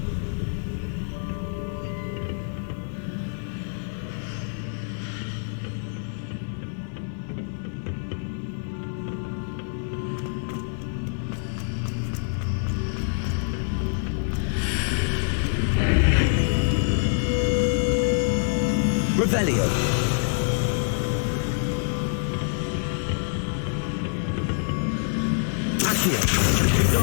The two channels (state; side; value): silent; right; digital silence